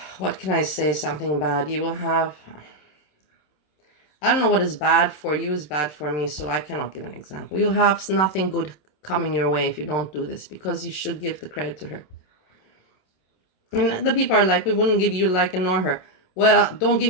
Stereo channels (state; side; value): late; right; 27 ms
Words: What can I say? Something bad. You will have... I don't know what is bad for you is bad for me, so I cannot give an example. You'll have nothing good coming your way if you don't do this, because you should give the credit to her. And the people are like, we wouldn't give you a like and nor her. Well, don't give